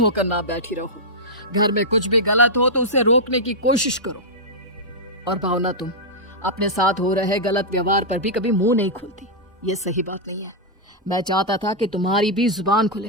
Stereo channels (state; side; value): normal; both; correlation -0.08